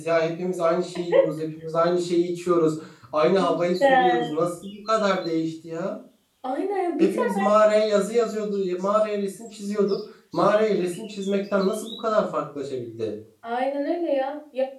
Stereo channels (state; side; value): identical; both; correlation 1.00